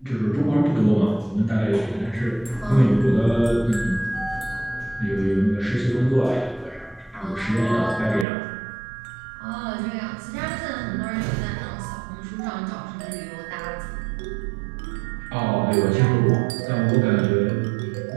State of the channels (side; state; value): left; drops out; at 8.2 s